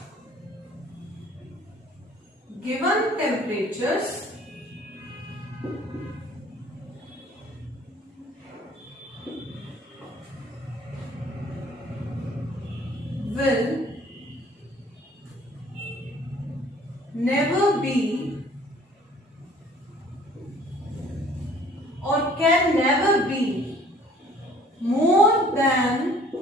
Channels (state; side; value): normal; both; correlation 0.55